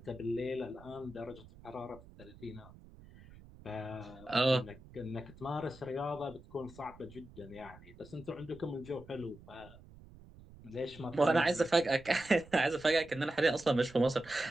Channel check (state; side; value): noise; right; rumble, 21 dB below the sound